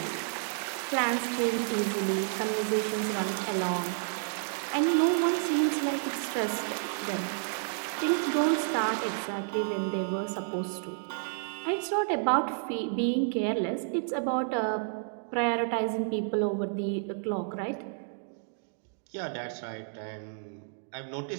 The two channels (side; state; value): left; silent; digital silence